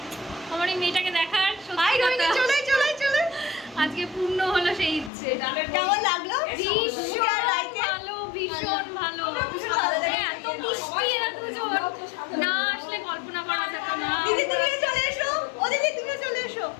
আমার এই মেয়েটাকে দেখার, হাই সত্যি রোহিণী, কথা। চলে চলে চলে। আজকে পূর্ণ হলো সেই ইচ্ছে। কেমন লাগলো? ভীষণ রাইতে? ভালো, ভীষণ ভালো। ভালো লেগেছে। এত মিষ্টি এরা দুজন, না আসলে কল্পনা করা যেত না। দিদি তুমিও চলে এসো। ও দিদি তুমিও চলে এসো।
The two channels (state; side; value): drops out; right; at 5.1 s